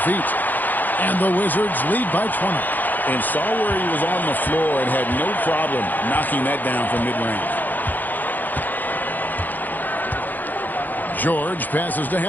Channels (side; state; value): right; late; 0.085 ms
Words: feet. And the Wizards lead by 20. And saw where he was on the floor and had no problem knocking that down from mid-range. George passes to